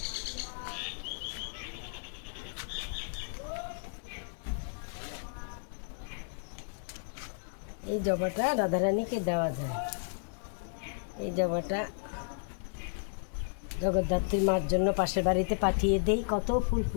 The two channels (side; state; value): right; silent; digital silence